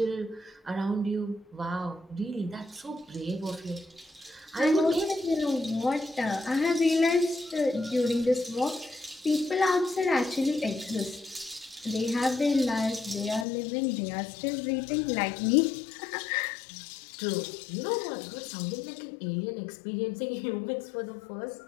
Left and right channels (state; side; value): drops out; right; at 13.5 s